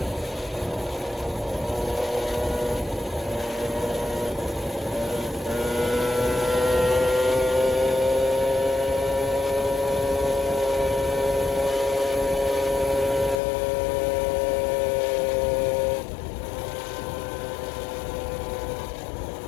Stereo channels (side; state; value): right; drops out; at 13.4 s